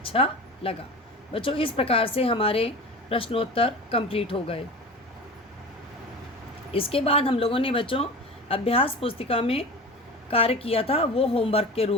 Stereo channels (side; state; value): both; normal; correlation 0.34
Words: लगा। बच्चों, इस प्रकार से हमारे प्रश्नोत्तर कंप्लीट हो गए। इसके बाद हम लोगों ने बच्चों अभ्यास पुस्तिका में कार्य किया था, वो होमवर्क के